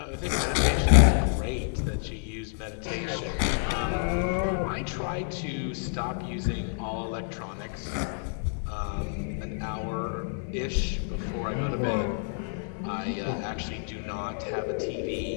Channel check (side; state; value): right; silent; 59 dB below the other